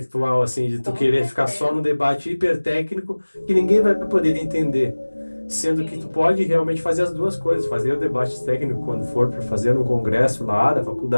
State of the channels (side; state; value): both; inverted; correlation -1.00